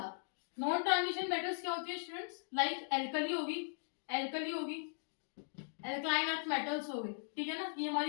नॉन ट्रांजिशन मेटल्स क्या होती है स्टूडेंट्स, लाइक एल्कली होगी, एल्कलाइन अर्थ मेटल्स हो गए. ठीक है ना. ये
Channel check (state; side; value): silent; right; digital silence